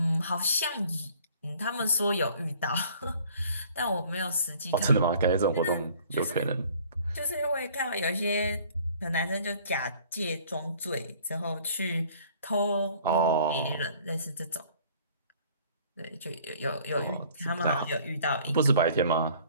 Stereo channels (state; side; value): inverted; both; correlation -0.54